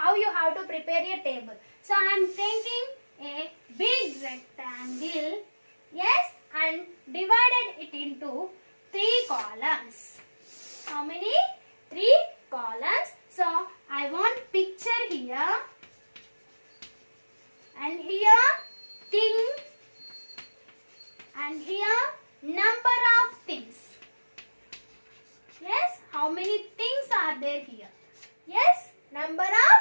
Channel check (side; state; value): both; inverted; correlation -1.00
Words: to prepare a table. So I am taking a big rectangle, yes, and divided it into 3 columns. How many? 3 columns. So I want picture here and here thing and here number of things. Yes, how many things are there here? Yes, number of